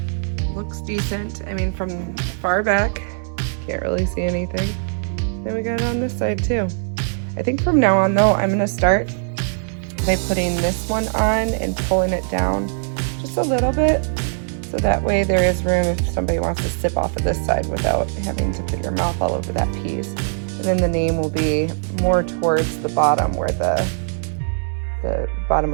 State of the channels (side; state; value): left; silent; digital silence